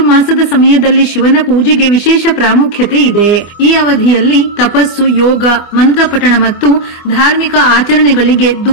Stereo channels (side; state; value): right; late; 24 ms